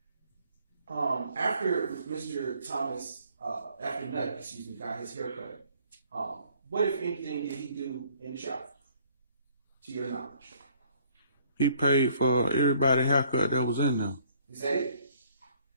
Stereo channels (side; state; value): both; inverted; correlation -0.61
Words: After Mr. Thomas, after Nutt, excuse me, got his haircut, what, if anything, did he do in the shop, to your knowledge? He paid for everybody's haircut that was in there. Is that it?